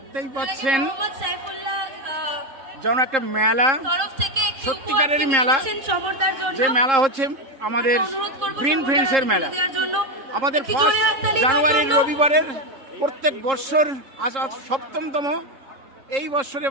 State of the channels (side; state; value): left; late; 3.7 ms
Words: পাচ্ছেন যেন একটা মেলা, সত্যিকারের মেলা, যে মেলা হচ্ছে আমাদের গ্রিন ফ্রেন্ডসের মেলা। আমাদের 1 জানুয়ারির রবিবারের প্রত্যেক বৎসর আজ 7তম এই বৎসরে